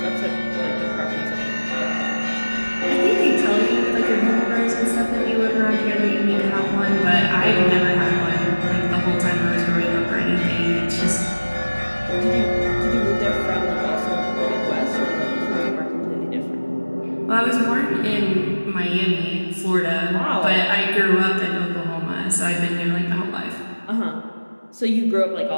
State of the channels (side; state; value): both; inverted; correlation -1.00